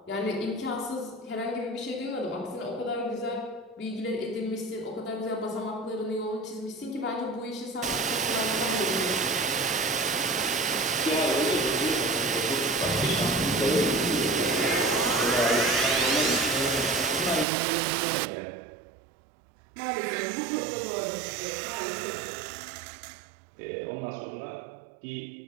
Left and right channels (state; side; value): drops out; left; at 17.4 s